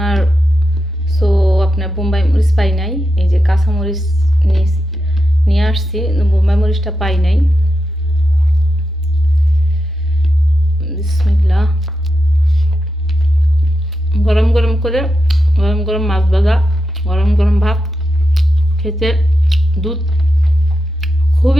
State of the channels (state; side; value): normal; both; correlation 0.88